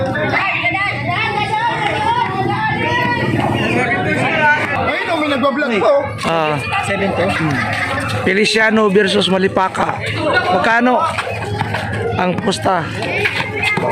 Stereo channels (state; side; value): identical; both; correlation 1.00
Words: May nagbablog po. 7 Feliciano versus Malipaka. Magkano ang pusta?